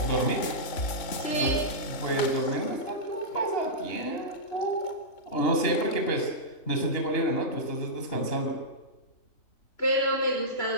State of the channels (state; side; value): late; right; 3.5 ms